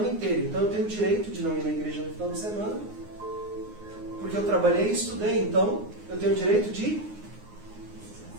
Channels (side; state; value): left; late; 9.6 ms